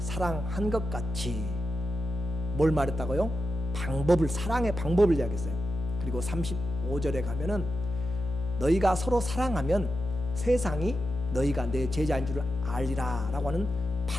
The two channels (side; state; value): left; noise; hum, 4 dB below the sound